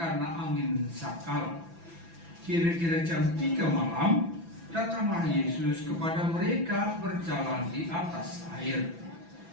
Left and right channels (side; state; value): left; late; 6.0 ms